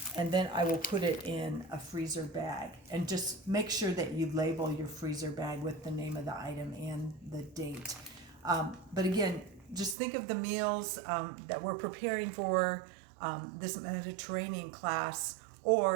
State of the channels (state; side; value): drops out; left; at 10.0 s